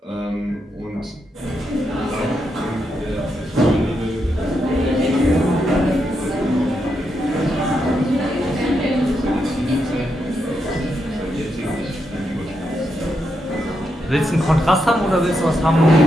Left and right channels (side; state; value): both; normal; correlation 0.82